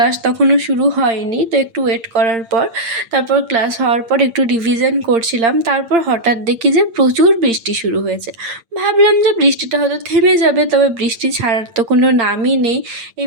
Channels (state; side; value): late; left; 8.8 ms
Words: তখনও শুরু হয়নি। তো একটু ওয়েট করার পর তারপর ক্লাস হওয়ার পর একটু রিভিশন করছিলাম। তারপর হঠাৎ দেখি যে প্রচুর বৃষ্টি শুরু হয়েছে। ভাবলাম যে বৃষ্টিটা হয়তো থেমে যাবে, তবে বৃষ্টি ছাড়ার তো কোনো নামই নেই। এই